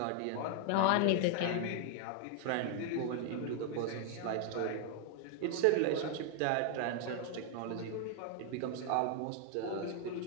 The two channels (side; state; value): both; different; correlation 0.00